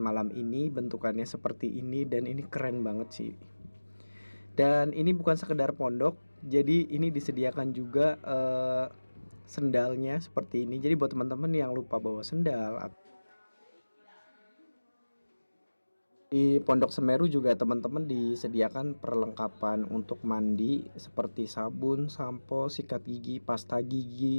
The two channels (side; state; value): both; inverted; correlation -1.00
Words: ini bentukannya seperti ini, dan ini keren banget sih. Dan ini bukan sekedar pondok, jadi ini disediakan juga sendalnya seperti ini. Jadi buat teman-teman yang lupa bawa sendal, di Pondok Semeru juga teman-teman disediakan perlengkapan untuk mandi seperti sabun, sampo, sikat gigi, pasta